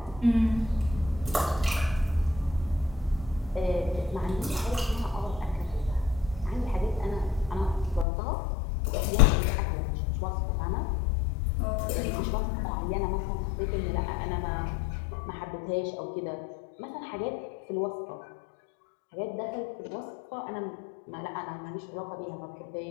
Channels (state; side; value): drops out; right; at 8.1 s